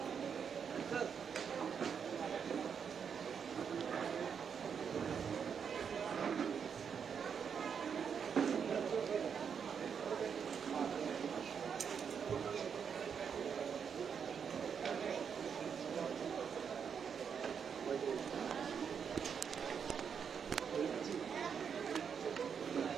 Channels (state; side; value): quieter; left; 7.0 dB